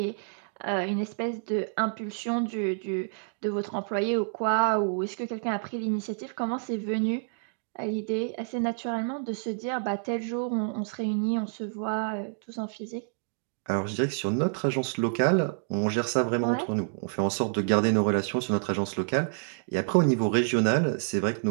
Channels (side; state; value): left; silent; digital silence